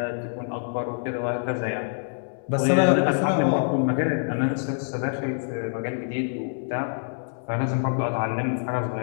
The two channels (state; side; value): silent; right; digital silence